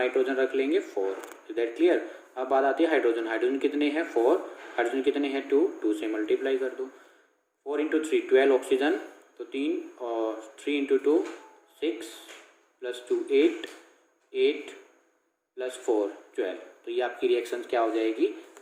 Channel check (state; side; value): identical; both; correlation 1.00